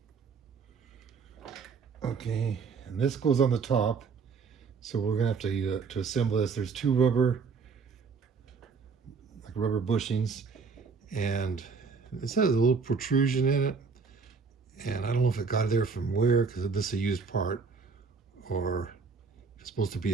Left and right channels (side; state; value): left; quieter; 5.1 dB